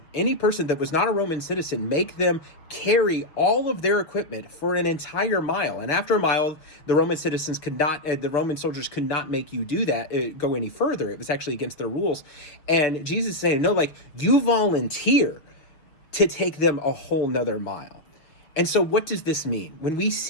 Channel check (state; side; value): late; right; 6.5 ms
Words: that was not a Roman citizen, make them carry all of their equipment for an entire mile. And after a mile, the Roman citizens could not, the Roman soldiers could not make you do that, go any further. It was actually against their rules. And Jesus is saying, no, like you volunteer to take them a whole nother mile. And so what does this mean? When we